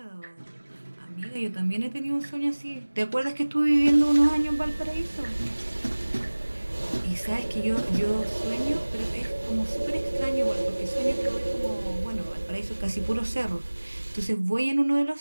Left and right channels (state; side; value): inverted; both; correlation -1.00